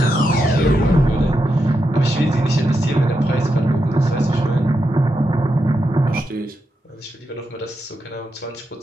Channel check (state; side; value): normal; both; correlation 0.85